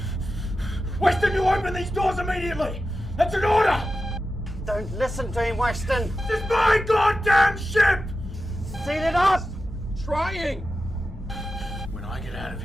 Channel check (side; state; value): both; normal; correlation 0.92